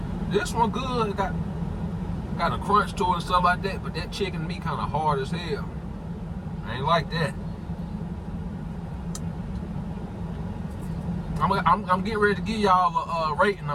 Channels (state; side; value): identical; both; correlation 1.00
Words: This one good. It got a crunch to it and stuff like that, but that chicken meat kind of hard as hell. I ain't like that. I'm getting ready to give y'all a rating